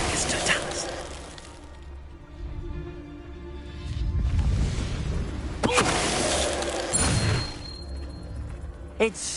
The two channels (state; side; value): identical; both; correlation 1.00